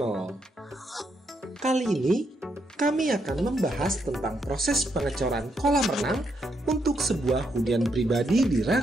Kali ini kami akan membahas tentang proses pengecoran kolam renang untuk sebuah hunian pribadi di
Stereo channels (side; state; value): both; normal; correlation 0.78